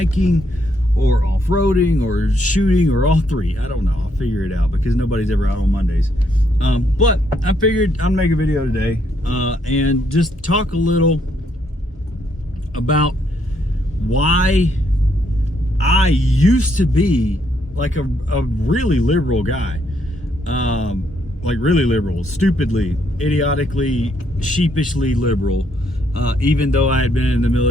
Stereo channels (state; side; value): normal; both; correlation 0.73